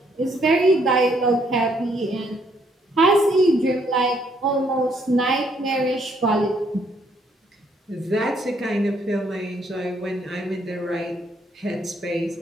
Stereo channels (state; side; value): normal; both; correlation 0.69